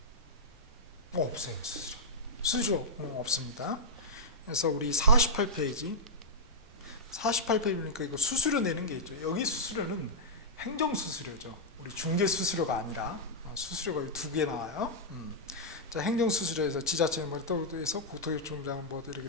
없어요. 수수료 없습니다. 그래서 우리 48페이지 보니까 이거 수수료 내는 게 있죠. 여기 수수료는 행정수수료죠. 우리 중개수수료가 아니라 수수료가 두 개 나와요. 자, 행정수수료에서 지자체 에서 국토교통부장 뭐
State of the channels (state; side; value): normal; both; correlation -0.09